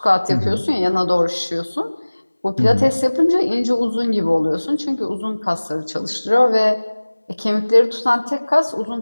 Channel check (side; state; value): both; inverted; correlation -1.00